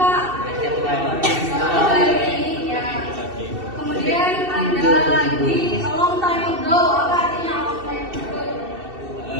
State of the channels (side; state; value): left; late; 2.7 ms